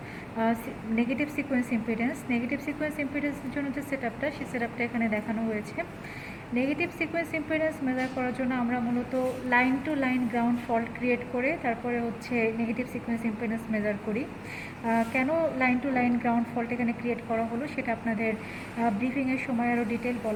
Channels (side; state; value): both; identical; correlation 1.00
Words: negative sequence impedance. Negative sequence ইম্পিডেন্সের জন্য যে সেটআপটা, সেই সেটআপটা এখানে দেখানো হয়েছে। নেগেটিভ সিকোয়েন্স ইম্পিডেন্স মেজার করার জন্য আমরা মূলত line to line ground fault create করে তারপরে হচ্ছে নেগেটিভ সিকোয়েন্স ইম্পিডেন্স মেজার করি। কেন line to line ground fault এখানে ক্রিয়েট করা হলো সেটা আপনাদের ব্রিফিংয়ের সময় আরও ডিটেল